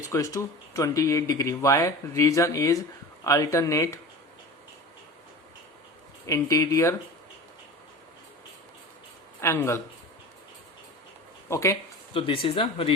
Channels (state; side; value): normal; both; correlation 0.34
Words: to 28 degree. Why reason is alternate interior angle. Okay, तो दिस इज द